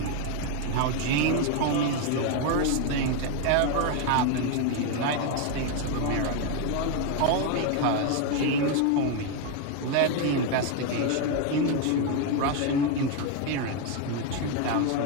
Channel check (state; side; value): different; both; correlation 0.01